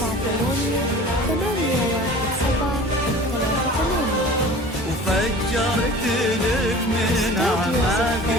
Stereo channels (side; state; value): both; normal; correlation 0.42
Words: وفجرت لك من أعماق